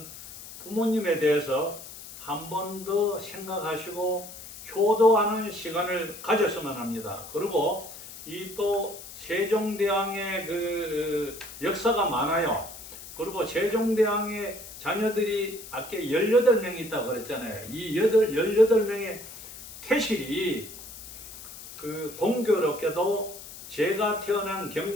부모님에 대해서 한 번 더 생각하시고 효도하는 시간을 가졌으면 합니다. 그리고 이 또 세종대왕의 그 역사가 많아요. 그리고 세종대왕의 자녀들이 아까 18명이 있다고 그랬잖아요. 이 18명의 태실이 그 공교롭게도 제가 태어난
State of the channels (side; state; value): left; noise; hiss, 14 dB below the sound